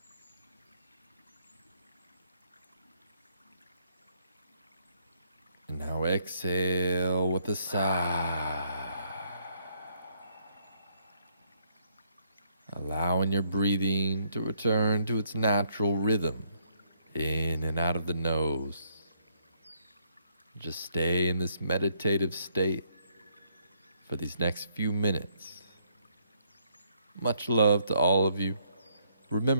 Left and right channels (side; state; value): both; inverted; correlation -0.71